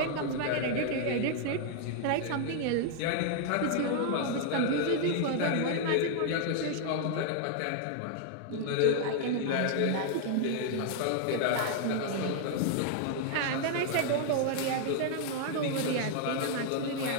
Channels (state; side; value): different; both; correlation 0.00